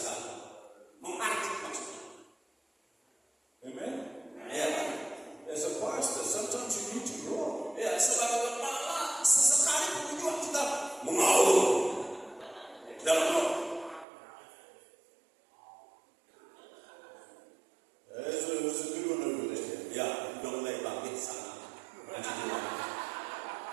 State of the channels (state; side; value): drops out; left; at 14.1 s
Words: mengartik maksudnya? Amen? Ya kan? As a pastor, sometimes you need to roar. Ya, sebagai kepala sesekali pun juga kita mengaum dalam roh. There's a good one over there. Ya, udah mulai bangkit sana. Lanjut dulu.